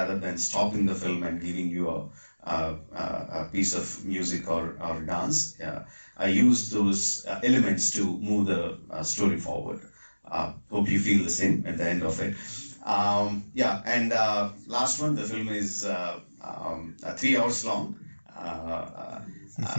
than stopping the film and giving you a piece of music or dance. I use those elements to move the story forward. Hope you feel the same at the end of it. Last one, the film is 3 hours long.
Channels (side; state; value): both; inverted; correlation -1.00